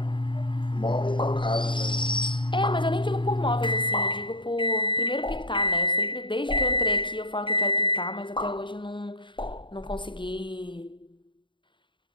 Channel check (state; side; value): late; right; 0.23 ms